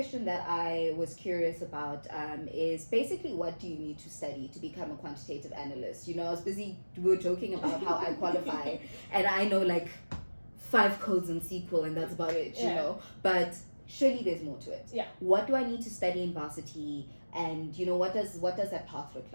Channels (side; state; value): both; inverted; correlation -1.00